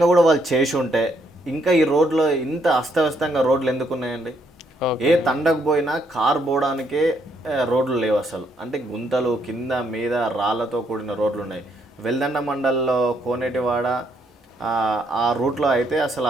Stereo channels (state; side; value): normal; both; correlation 0.72